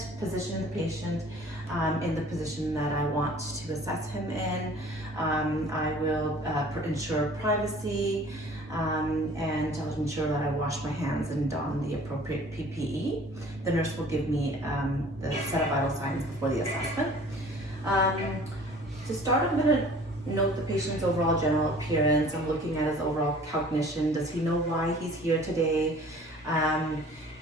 position the patient in the position that I want to assess him in. I will ensure privacy and I'll ensure that I wash my hands and don the appropriate PPE. The nurse will give me the set of vital signs before the assessment. To start, I'm going to note the patient's overall general appearance. I'm looking at his overall cognition. Does he know why he's here today?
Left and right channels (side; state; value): both; normal; correlation 0.49